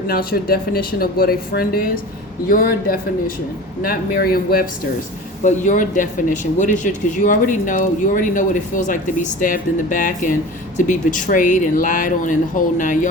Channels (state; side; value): normal; both; correlation 0.36